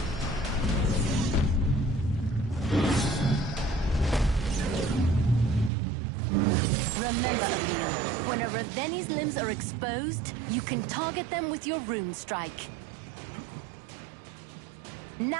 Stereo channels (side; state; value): left; drops out; at 5.7 s